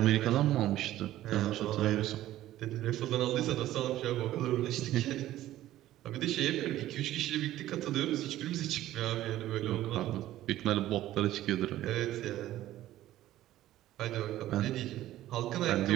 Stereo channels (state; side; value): quieter; left; 14.2 dB